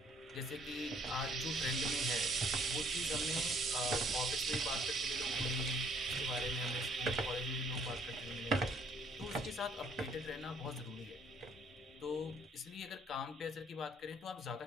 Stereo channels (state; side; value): normal; both; correlation 0.62